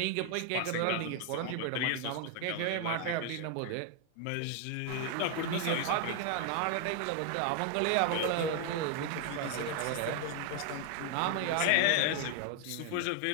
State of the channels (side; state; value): both; different; correlation 0.00